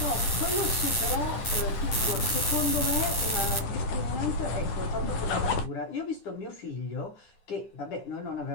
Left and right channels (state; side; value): late; right; 9.5 ms